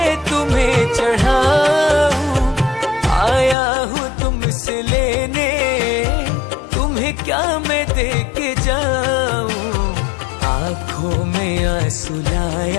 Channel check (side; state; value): right; drops out; at 3.6 s